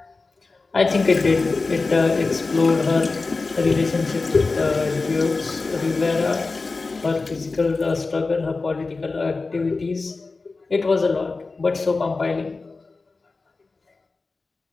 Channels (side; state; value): right; quieter; 3.8 dB